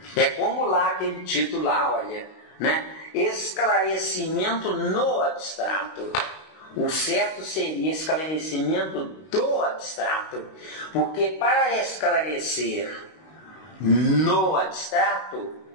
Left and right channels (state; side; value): late; right; 19 ms